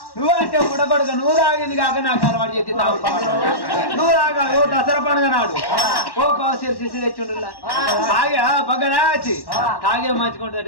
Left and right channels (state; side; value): late; right; 1.1 ms